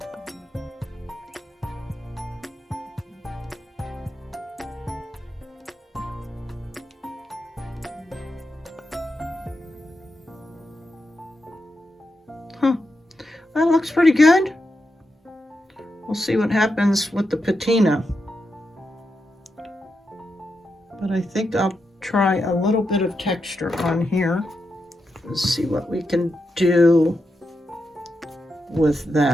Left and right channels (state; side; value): normal; both; correlation 0.86